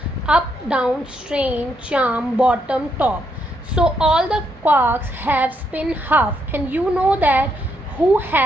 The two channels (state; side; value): normal; both; correlation 0.77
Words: up, down, strange, charm, bottom, top. So all the quarks have spin half, and you know that who